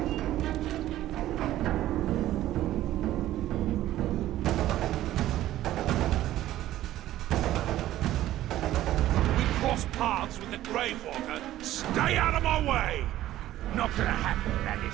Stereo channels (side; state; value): left; quieter; 14.0 dB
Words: Paths with the Gravewalker. Stay out of my way! Not gonna happen,